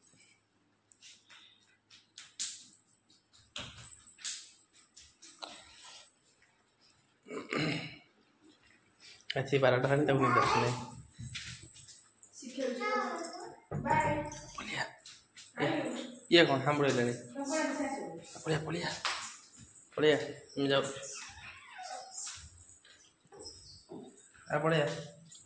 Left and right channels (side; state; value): both; identical; correlation 1.00